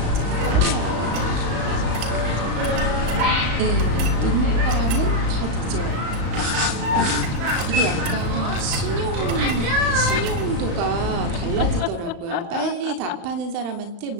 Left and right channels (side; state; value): left; late; 35 ms